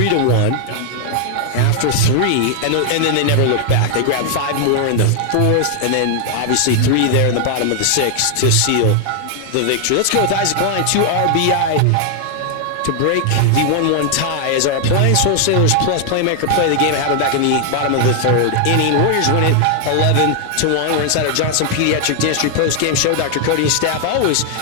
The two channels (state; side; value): different; both; correlation 0.00